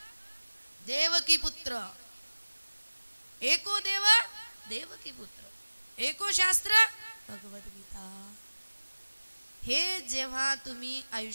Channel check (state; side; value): inverted; both; correlation -1.00